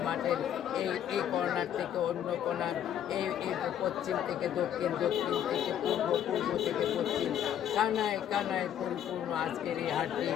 মাঠের এই কর্নার থেকে অন্য কর্নার, এই পশ্চিম থেকে দক্ষিণ, দক্ষিণ থেকে পূর্ব, পূর্ব থেকে পশ্চিম, কানায় কানায় পরিপূর্ণ আজকের এই হাটটি।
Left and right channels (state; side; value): quieter; right; 10.1 dB